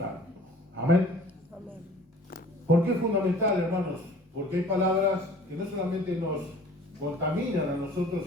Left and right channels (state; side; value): normal; both; correlation 0.49